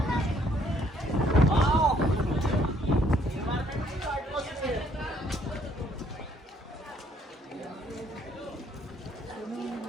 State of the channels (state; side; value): normal; both; correlation 0.66